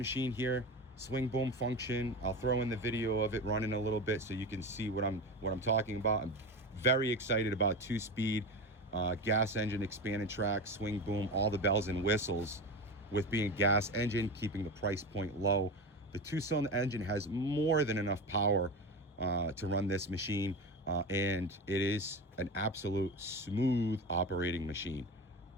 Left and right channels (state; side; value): normal; both; correlation 0.24